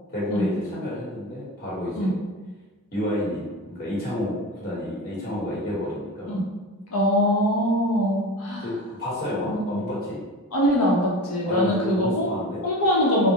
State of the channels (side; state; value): both; normal; correlation 0.28